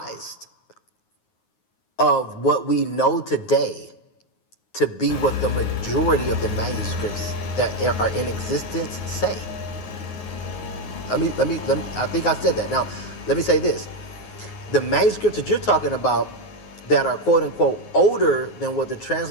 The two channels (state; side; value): late; right; 9.5 ms